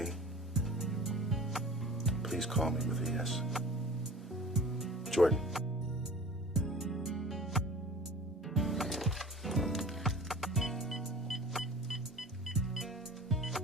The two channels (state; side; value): normal; both; correlation 0.41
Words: Please call me with a yes. Jordan.